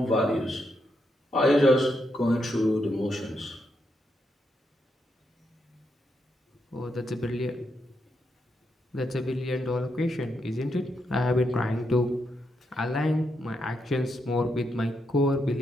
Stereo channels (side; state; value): both; normal; correlation 0.81